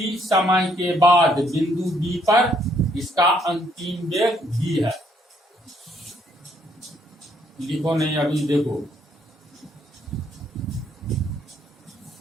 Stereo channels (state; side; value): normal; both; correlation 0.69